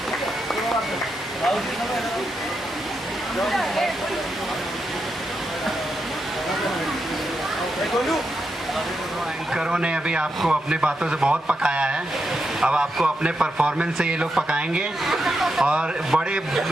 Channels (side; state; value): both; normal; correlation 0.85